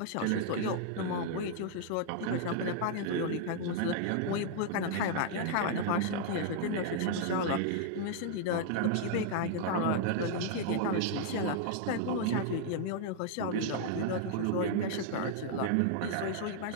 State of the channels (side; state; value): both; different; correlation -0.01